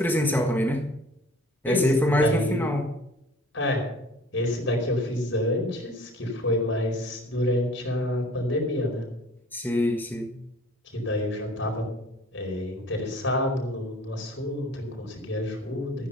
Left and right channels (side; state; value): both; normal; correlation 0.49